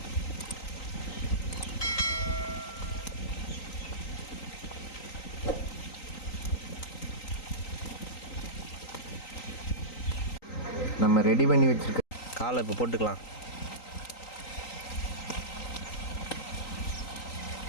நம்ம ரெடி பண்ணி வச்சுருக்க காலை இப்போ போட்டுக்கலாம்.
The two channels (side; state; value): right; late; 3.9 ms